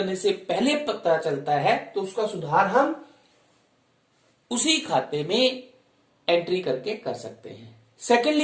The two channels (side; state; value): both; identical; correlation 1.00